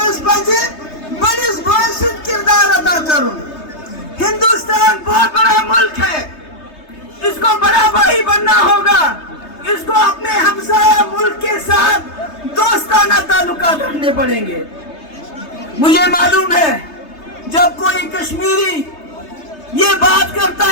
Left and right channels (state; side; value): late; right; 3.3 ms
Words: پزِ بڑس بھائی سۭتۍ کردار ادا کرن ہندوستان بہت بڑا ملک ہے اس کو بڑا بھائی بننا ہوگا اس کو اپنے ہمسایہ ملک کے ساتھ دوستانہ تعلقات رکھنے پڑیں گے مجھے معلوم ہے جب کوئی کشمیری یہ بات کرتا